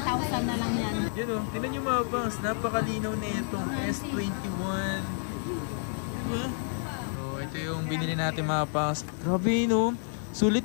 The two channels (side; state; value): right; silent; 58 dB below the other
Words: na lang yan. Yun o, tinan nyo mga pangs, napakalinaw na itong S21. Diba? So, ito yung binili natin mga pangs. Grabe no,